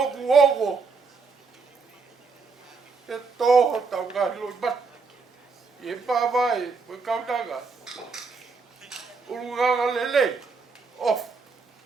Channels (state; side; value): quieter; left; 4.6 dB